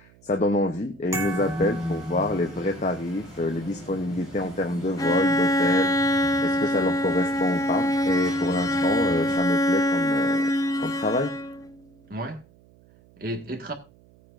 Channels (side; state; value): right; noise; hum, 28 dB below the sound